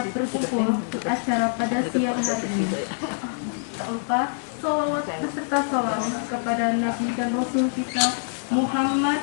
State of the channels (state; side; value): silent; right; digital silence